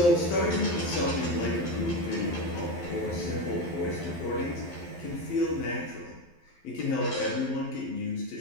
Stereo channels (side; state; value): right; late; 12 ms